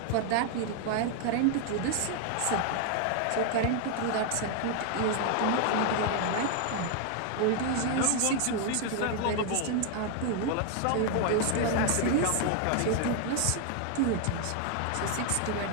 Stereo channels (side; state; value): both; different; correlation 0.00